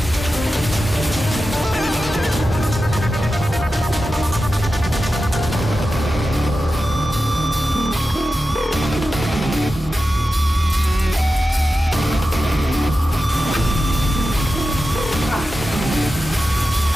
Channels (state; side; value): normal; both; correlation 0.92